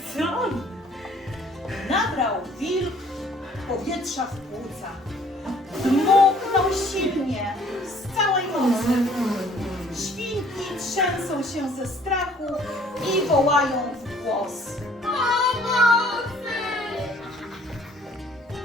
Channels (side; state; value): both; normal; correlation 0.57